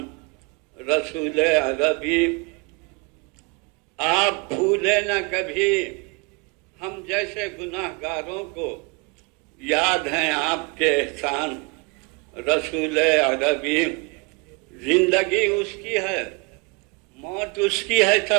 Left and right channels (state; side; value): quieter; left; 29.4 dB